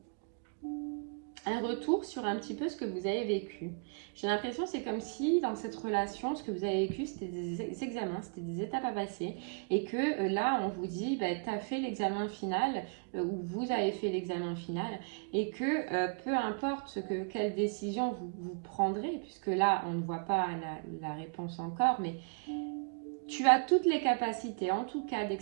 un retour sur un petit peu ce que vous avez vécu. J'ai l'impression c'est comme si dans cette relation, ce que vous avez vécu, c'était des examens, c'était des étapes à passer. Et que là, on vous dit, bah, tu as fait l'examen final, ou vous avez fait l'examen final, et que peu importe quelle décision vous prendrez, puisque là, on ne voit pas la réponse encore, mais tu as toutes les capacités, en tout cas, dès que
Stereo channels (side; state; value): left; quieter; 39.3 dB